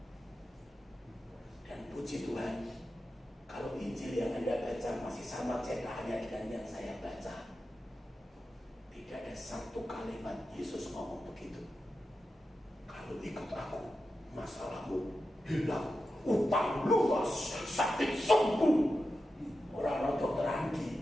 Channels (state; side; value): normal; both; correlation 0.90